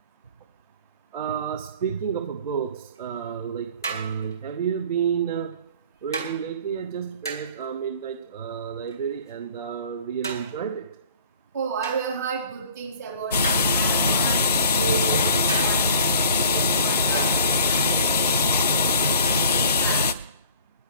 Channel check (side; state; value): both; inverted; correlation -0.47